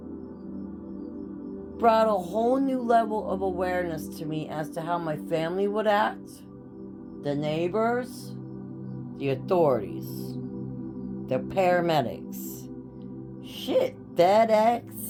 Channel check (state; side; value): identical; both; correlation 1.00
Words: Brought a whole new level of awareness to me as to how my family would act, the neighbors, the authorities, the paramedics, shit,